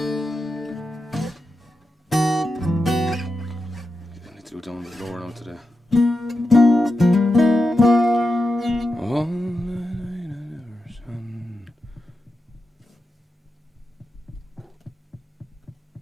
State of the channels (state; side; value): normal; both; correlation 0.89